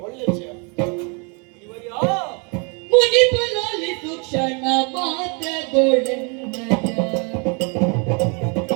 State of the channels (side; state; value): left; quieter; 34.6 dB